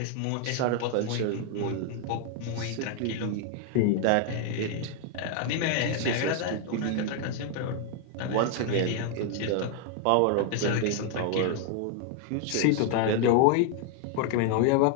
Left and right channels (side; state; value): both; different; correlation 0.00